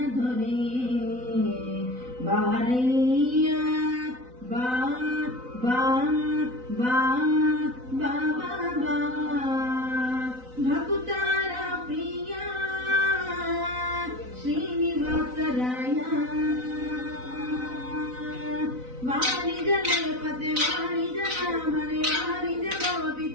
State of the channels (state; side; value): late; left; 4.0 ms